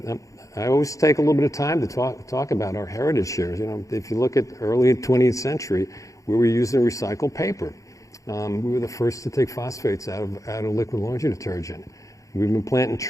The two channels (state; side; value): late; right; 0.16 ms